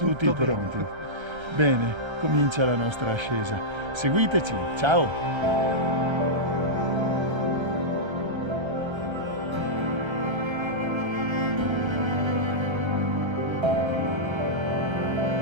Tutto pronti. bene. Bene, comincia la nostra ascesa. Seguiteci, ciao!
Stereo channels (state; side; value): late; left; 1.3 ms